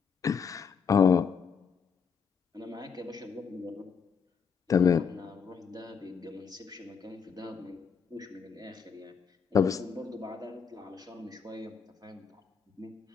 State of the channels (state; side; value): quieter; right; 6.3 dB